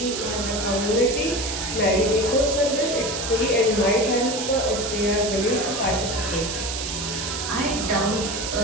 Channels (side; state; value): right; noise; hiss, 4 dB below the sound